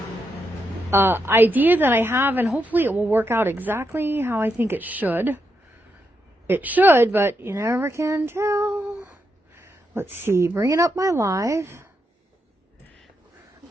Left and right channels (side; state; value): both; normal; correlation 0.83